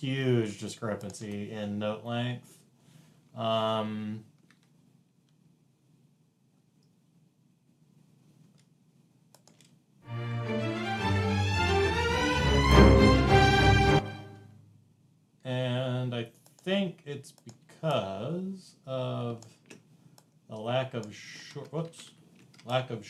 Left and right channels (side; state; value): both; identical; correlation 1.00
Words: discrepancy in note length. And I think it's because of the lack of short